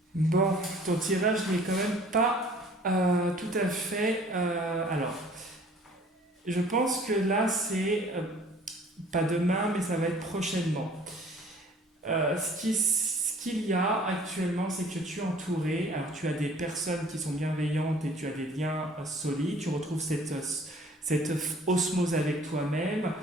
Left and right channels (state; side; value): normal; both; correlation 0.52